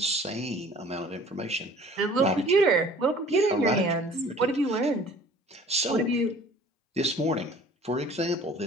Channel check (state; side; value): normal; both; correlation 0.49